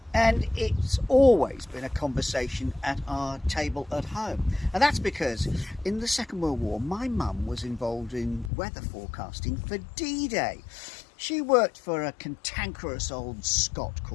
and it's always been a conversation at our table at home. And that's because in the Second World War, my mum was involved in weather forecasting for D-Day. She worked for a cantankerous old Scot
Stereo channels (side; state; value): right; drops out; at 8.5 s